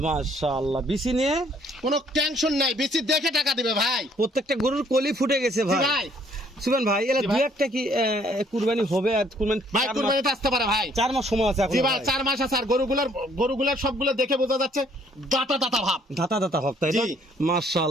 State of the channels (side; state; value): both; normal; correlation 0.63